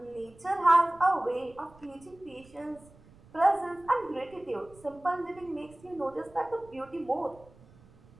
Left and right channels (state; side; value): noise; right; rumble, 25 dB below the sound